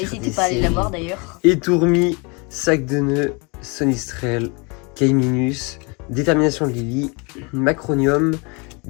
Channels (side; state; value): right; quieter; 30.4 dB